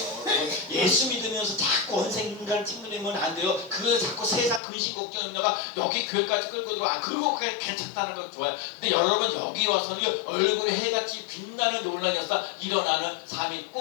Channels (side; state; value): right; drops out; at 4.6 s